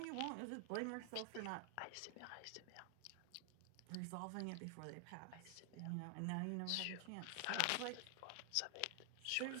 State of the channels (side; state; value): both; different; correlation 0.00